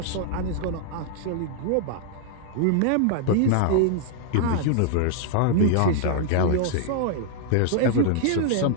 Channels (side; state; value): both; different; correlation -0.01